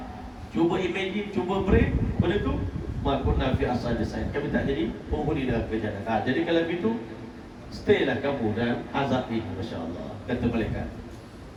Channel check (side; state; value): both; identical; correlation 1.00